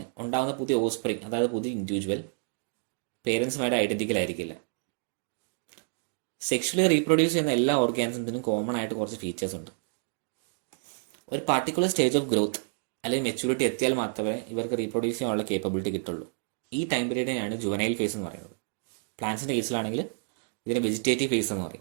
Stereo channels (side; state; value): left; silent; digital silence